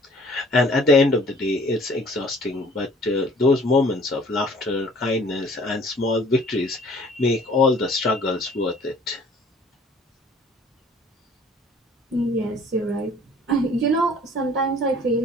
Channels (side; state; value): both; normal; correlation 0.54